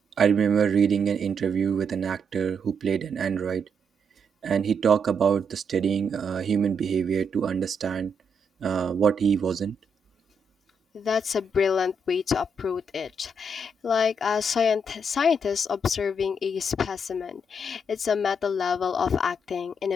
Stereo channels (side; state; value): both; normal; correlation 0.77